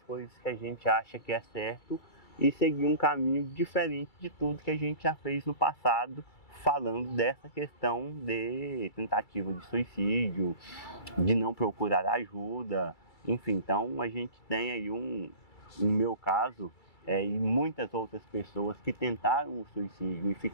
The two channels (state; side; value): late; right; 2.3 ms